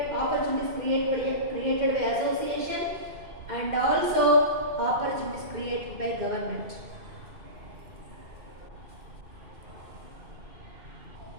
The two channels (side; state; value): left; late; 2.5 ms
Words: opportunities created by association, and also opportunities created by government.